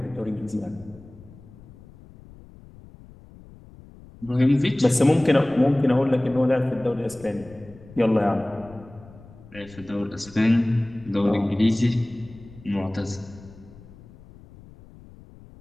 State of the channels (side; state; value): left; noise; rumble, 21 dB below the sound